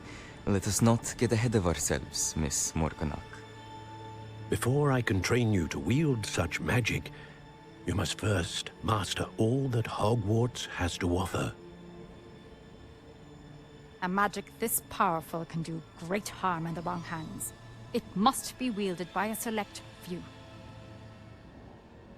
let us not get ahead of ourselves, Miss Morganach. Before I can train you to wield such magic, you must first master all that Hogwarts has to offer. A magic this powerful can do great harm in the wrong hands. It must be wielded by a select few.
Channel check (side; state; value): both; identical; correlation 1.00